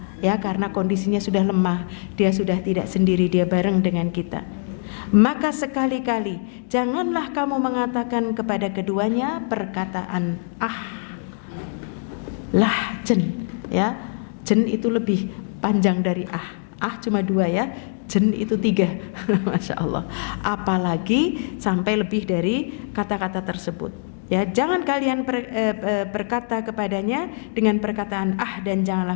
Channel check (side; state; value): right; silent; digital silence